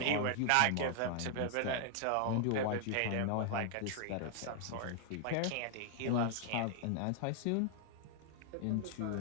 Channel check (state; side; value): different; both; correlation 0.00